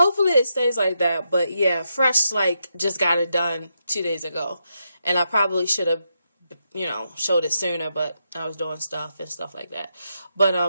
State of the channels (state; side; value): inverted; both; correlation -0.82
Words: it stays like that. But yeah, fresh, like just got it done 2 days ago. And I probably should have, you know, showed it sooner, but I was doing stuff and stuff like that. But